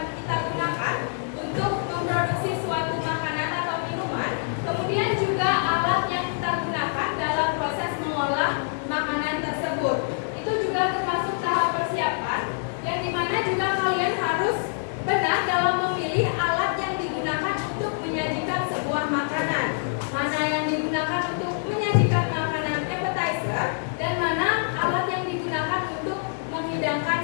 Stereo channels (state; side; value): silent; right; digital silence